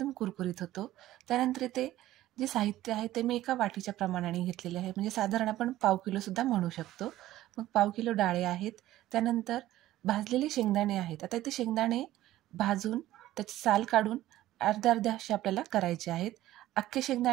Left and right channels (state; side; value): quieter; left; 14.8 dB